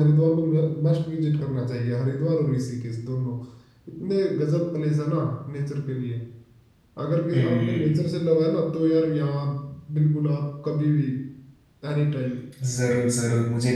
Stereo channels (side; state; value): both; identical; correlation 1.00